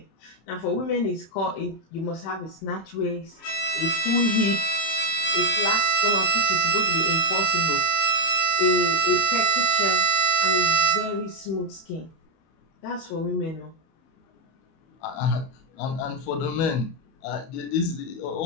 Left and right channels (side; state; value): right; late; 31 ms